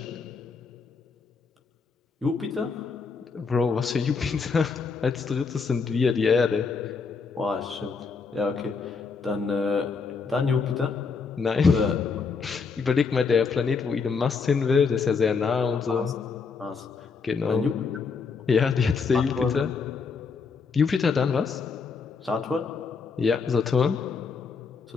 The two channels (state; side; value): quieter; right; 5.1 dB